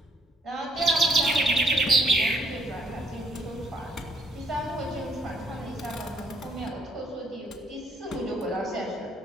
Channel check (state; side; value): normal; both; correlation 0.67